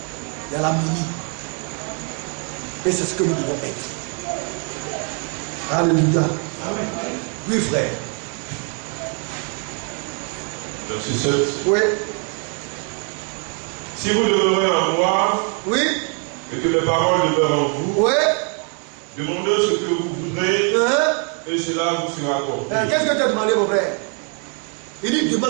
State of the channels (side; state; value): left; quieter; 39.4 dB